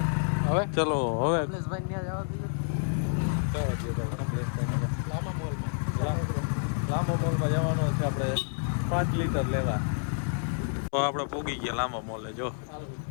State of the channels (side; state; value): right; silent; 58 dB below the other